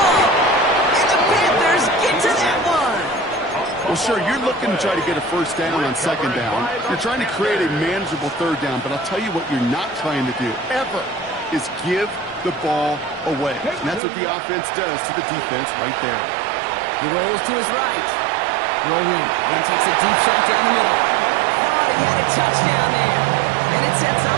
And the Panthers get to that one. Well, sure, you're looking to try to get a first down on 2nd down. You're trying to create a manageable 3rd down, but I'll tell you what you're not trying to do, ever, is give the ball away. And that's what the offense does to the defense right there. He rolls to his right. Rolling and takes a deep shot down the middle. Thought he had a touchdown there. And it sets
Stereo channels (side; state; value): left; drops out; at 14.0 s